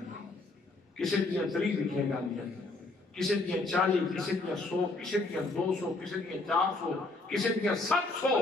کسی دیا 30 لکھیے جاندی، کسی دیا 40، کسی دیا 100، کسی دیا 200، کسی دیا 400، کسی دیا 700،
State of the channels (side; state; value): right; quieter; 3.2 dB